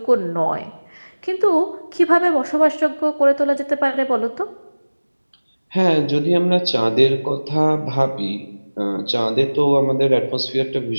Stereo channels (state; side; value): inverted; both; correlation -1.00